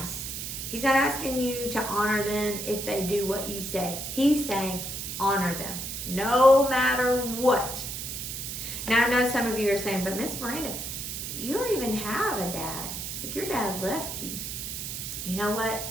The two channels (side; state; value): right; noise; hiss, 6 dB below the sound